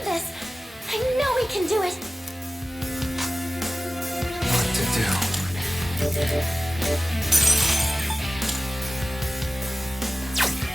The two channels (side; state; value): both; normal; correlation 0.97